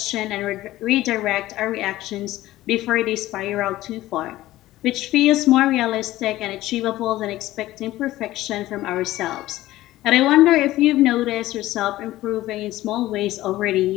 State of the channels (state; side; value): quieter; right; 15.9 dB